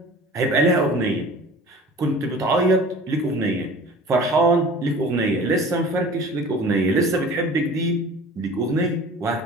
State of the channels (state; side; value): normal; both; correlation 0.43